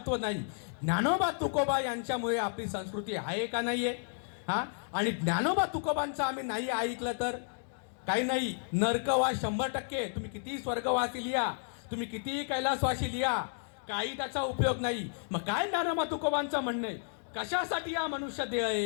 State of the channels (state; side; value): silent; right; digital silence